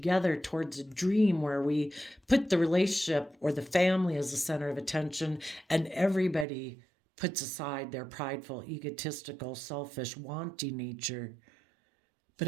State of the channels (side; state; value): left; drops out; at 6.5 s